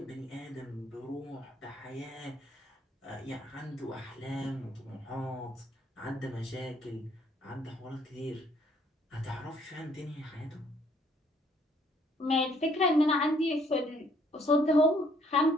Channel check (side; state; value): both; normal; correlation 0.64